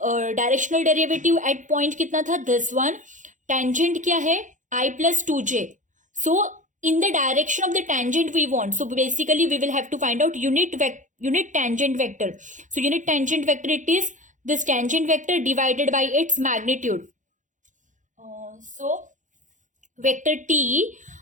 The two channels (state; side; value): late; left; 0.36 ms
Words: directional derivative at point kitna tha? This one. Tangent kya hai? I plus 2j. So in the direction of the tangent we want. So basically we will have to find out unit tangent vector. So unit tangent vector it is this tangent vector divided by its magnitude. So vector t